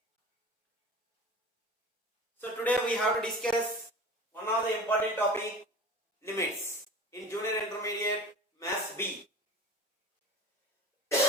So today we have to discuss one of the important topic, limits in junior intermediate maths B.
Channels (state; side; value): normal; both; correlation 0.36